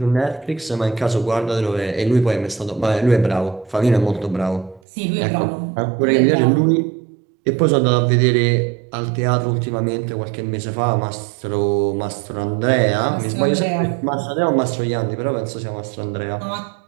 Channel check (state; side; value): drops out; left; at 4.8 s